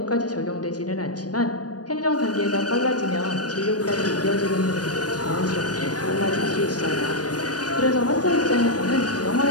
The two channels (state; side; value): late; right; 0.69 ms